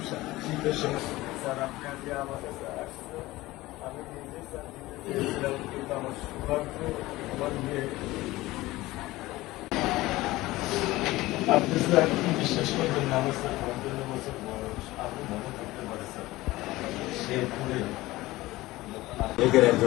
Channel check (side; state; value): right; quieter; 18.6 dB